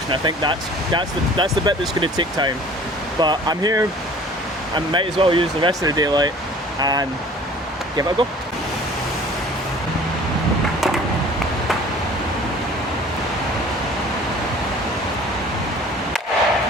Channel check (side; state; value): both; normal; correlation 0.48